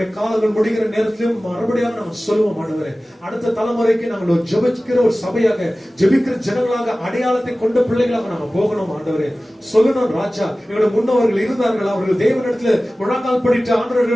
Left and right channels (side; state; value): both; normal; correlation 0.97